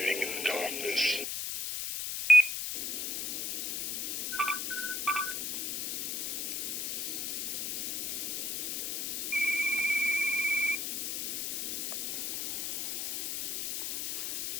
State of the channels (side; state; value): left; noise; hiss, 2 dB below the sound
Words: in the darkness?